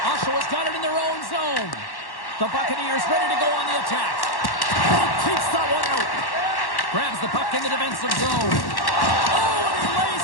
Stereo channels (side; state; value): right; late; 1.1 ms